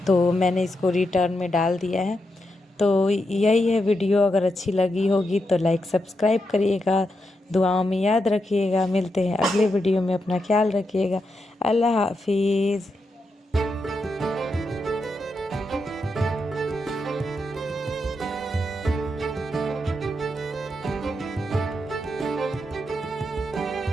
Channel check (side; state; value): both; normal; correlation 0.84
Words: तो मैंने इसको रिटर्न में डाल दिया है। तो यही है वीडियो, अगर अच्छी लगी होगी तो लाइक सब्सक्राइब करिएगा, दुआओं में याद रखिएगा। मिलते हैं अगले वीडियो में, अपना ख्याल रखिएगा। अल्लाह हाफिज़।